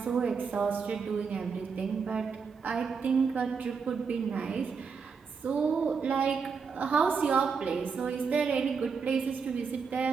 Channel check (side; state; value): left; quieter; 5.6 dB